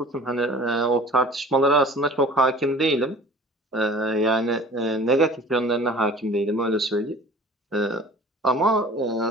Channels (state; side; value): normal; both; correlation 0.45